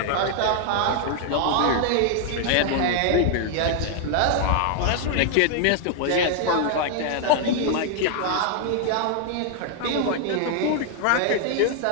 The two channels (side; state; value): both; different; correlation 0.00